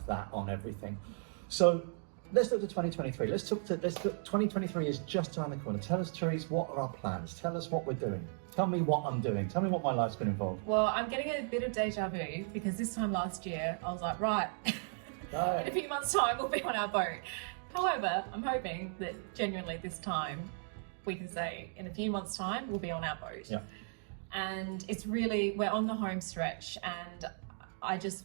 that on everything. So let's look to 2023. Let's look 2023 is just around the corner. Tell us, Terysa, what are our plans? Tell us what we're doing. Tell me what I'm doing. Tell me what my life's been involved. Well, I'm getting a bit of deja vu because this time last year I was like, right, in a few months' time we'll be on our boat. However, I'm hoping that genuinely this time we can say in a few months' time we'll be on our boat. Yeah. And it's really, we're on the home stretch, and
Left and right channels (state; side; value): silent; left; 54 dB below the other